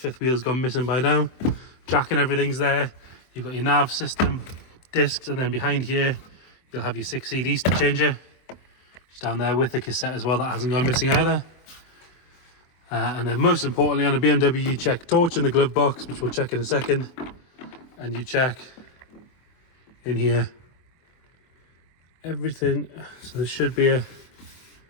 wheel's gone missing by now. Jack and everything's there. You've got your nav system, discs, and then behind here you'll have your 6 CD changer. It's down there with the cassette as well, that hasn't gone missing either. And then most importantly on a BMW you check torch in the glove box, which we'll check in a second, and you check in here everything. So there should be a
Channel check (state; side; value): late; right; 24 ms